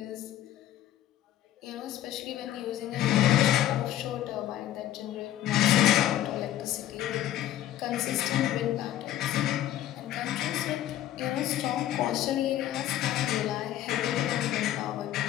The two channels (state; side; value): quieter; right; 12.8 dB